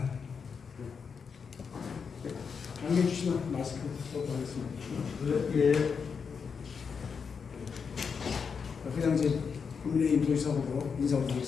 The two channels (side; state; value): right; quieter; 6.0 dB